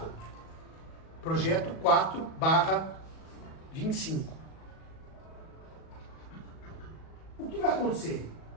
Projeto 4/25. O que vai acontecer?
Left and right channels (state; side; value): late; right; 37 ms